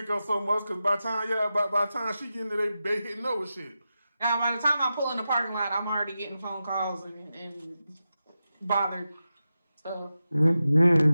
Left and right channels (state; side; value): inverted; both; correlation -0.91